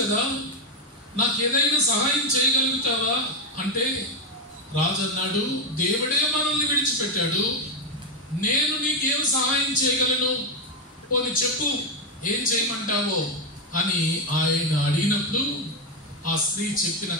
కదా, నాకు ఏదైనా సహాయం చేయగలుగుతావా అంటే రాజు అన్నాడు, దేవుడే మనల్ని విడిచిపెట్టాడు, నేను నీకేం సహాయం చేయగలను, పోనీ చెప్పు, ఏం చేయమంటావో అని ఆయన అడిగినప్పుడు ఆ స్త్రీ చెప్పిన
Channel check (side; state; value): both; normal; correlation 0.06